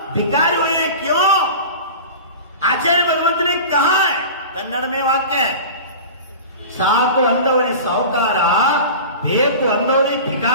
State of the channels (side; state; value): both; inverted; correlation -0.34